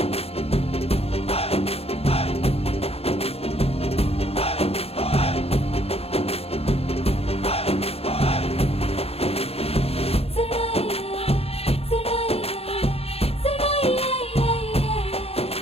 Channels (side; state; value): right; late; 0.29 ms